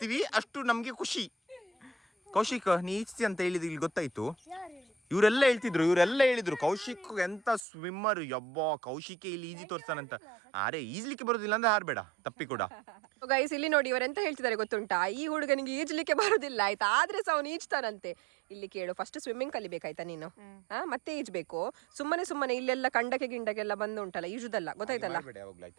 ಅಷ್ಟು ನಮ್ಗೆ ಖುಷಿ. ಕೌಶಿಕ್ ನೀ ಈಜ್ತಿ ಅಂತ ಹೇಳಿದ್ ಇಲ್ಲಿ ಗೊತ್ತಾಯ್ತು. ಇವರೆಲ್ಲ ಹೇಳಿದ್ರು ಕೌಶಿಕ್ ಎಂತ ಸ್ವಿಮ್ಮರ್, ಯಬ್ಬ ಕೌಶಿಕೆ ಇಲ್ಲಿ ಈಜಿ ತೋರ್ಸ್ತಾನಂತ. ಅರೆ ಈಜ್ಲಿಕ್ಕೆ ಬರೋದಿಲ್ಲ ಅಂದ್ರೆ ಹಾರ್ಬೇಡ ತಪ್ಪಿ ಕೂಡ. ಗೈಸ್ ಇಲ್ಲಿ ನೋಡಿ ಇವರೆಂತ ಹೇಳ್ತಿದ್ದಾರೆ ಗೊತ್ತುಂಟಾ, ಈ ಹುಡುಗನಿಗೆ ಈಜ್ಲಿಕ್ಕೆ ಬರೋದಿಲ್ಲ ಆಯ್ತಾ, ಆದ್ರೆ ಸಹ ಅವನು ಈಜ್ತಾನಂತೆ. ಇಲ್ಲಿ ಕೇಳು, ಫಸ್ಟ್ ಸ್ವಿಮ್ಮಿಂಗ್ ಕಲಿಬೇಕಾಯ್ತಾ ನೀನು, ಮತ್ತೆ ಈಜ್ಬೇಕು. ಸುಮ್ಮನೆ ಇಲ್ಲೆಲ್ಲ ಕಂಡಕ್ಕೆ ಗಿಂಡಕ್ಕೆಲ್ಲ ಬಂದು ಉಂಟಲ್ಲ ಈಜುದಲ್ಲ, ಗೊತ್ತಾಯ್ತಲ್ಲ?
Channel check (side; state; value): left; drops out; at 7.7 s